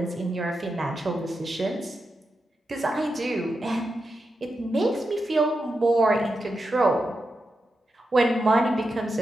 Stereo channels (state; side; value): normal; both; correlation 0.88